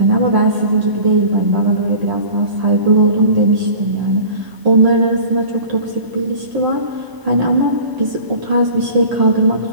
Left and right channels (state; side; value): late; left; 1.0 ms